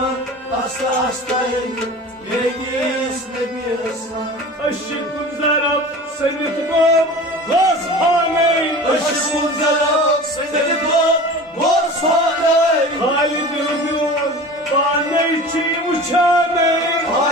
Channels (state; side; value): normal; both; correlation 0.37